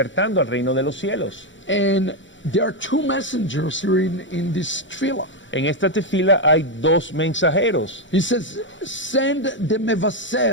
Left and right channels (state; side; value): late; right; 0.55 ms